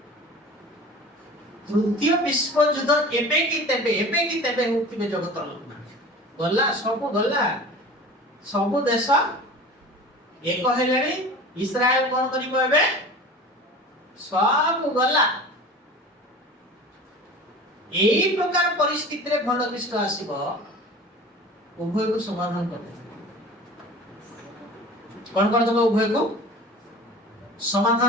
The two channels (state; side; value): normal; both; correlation 0.39